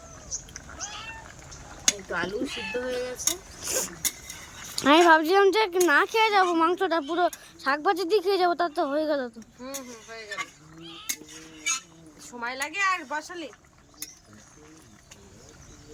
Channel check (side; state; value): both; identical; correlation 1.00